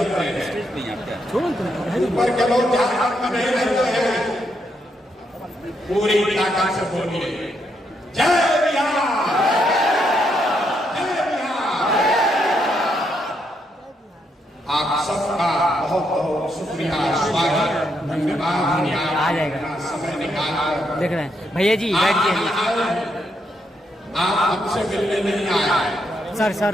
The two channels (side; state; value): both; normal; correlation 0.78